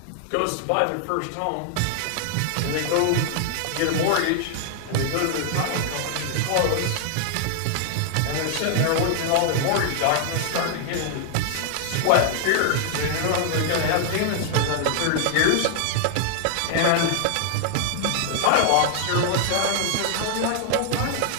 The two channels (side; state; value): both; different; correlation 0.00